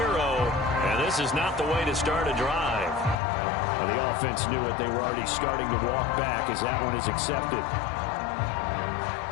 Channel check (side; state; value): right; drops out; at 3.2 s